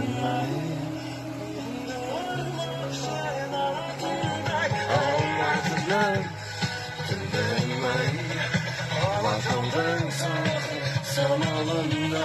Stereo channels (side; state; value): both; identical; correlation 1.00